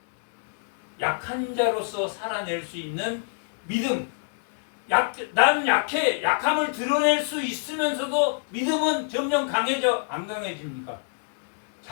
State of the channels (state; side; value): silent; right; digital silence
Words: 약한 자로서 살아낼 수 있는 믿음. 난 약해. 약함을 드러낼 수 있으면서도 믿음은 점점 강해져. 안 강해집니까?